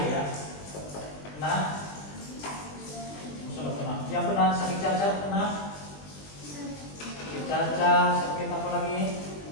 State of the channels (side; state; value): right; late; 20 ms